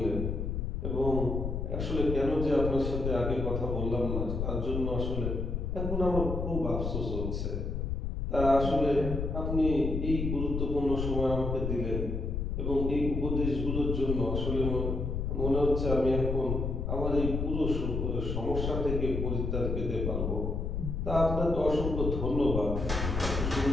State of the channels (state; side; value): noise; left; rumble, 2 dB below the sound